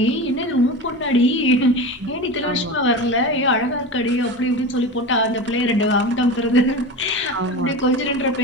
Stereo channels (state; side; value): normal; both; correlation 0.27